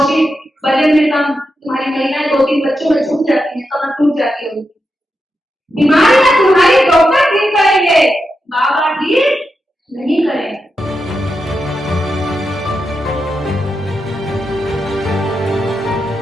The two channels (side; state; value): both; normal; correlation 0.87